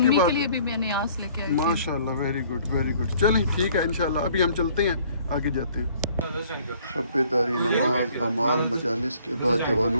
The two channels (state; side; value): inverted; both; correlation -0.58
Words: کے کے بعد لیے بھی میں نے آس لے کے آئی تھی۔ ماشاءاللہ ویری گڈ، چلیں ٹھیک ہے انشاءاللہ، ابھی ہم چلتے ہیں، آگے جاتے ہیں۔ شب داری، نماز، اعمال، مجالس کے بعد